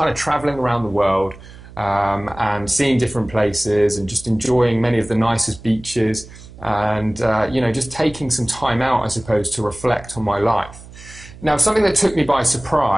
of traveling around the world and seeing different places and just enjoying many of the nicest beaches and, you know, just taking some time out, I suppose, to reflect on my life. Now, something that took me by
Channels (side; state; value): right; noise; hum, 18 dB below the sound